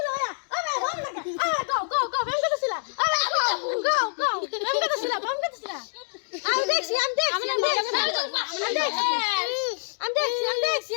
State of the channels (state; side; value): silent; right; 61 dB below the other